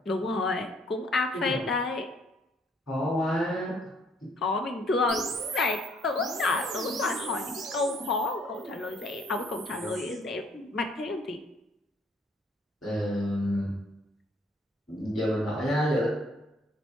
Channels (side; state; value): both; normal; correlation 0.63